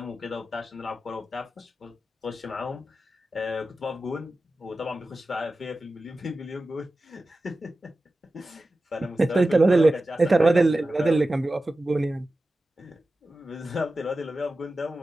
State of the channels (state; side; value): normal; both; correlation 0.94